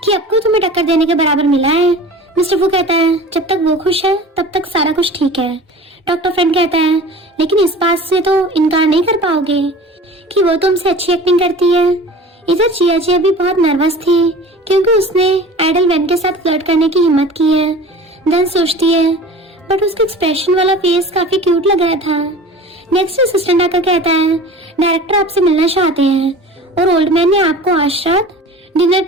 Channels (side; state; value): both; normal; correlation 0.40